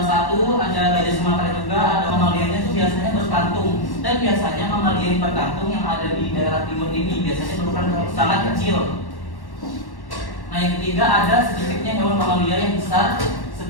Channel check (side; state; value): right; late; 1.1 ms